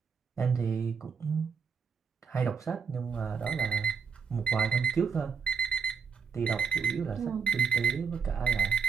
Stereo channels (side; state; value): left; quieter; 6.0 dB